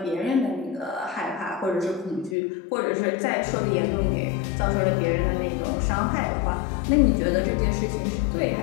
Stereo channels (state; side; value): drops out; right; at 2.4 s